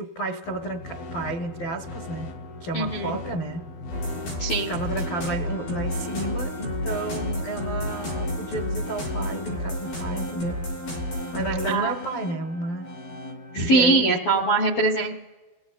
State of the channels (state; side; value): late; right; 12 ms